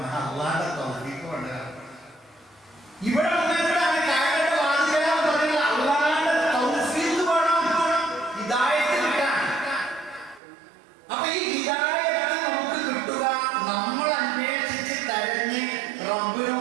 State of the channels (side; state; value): left; drops out; at 10.4 s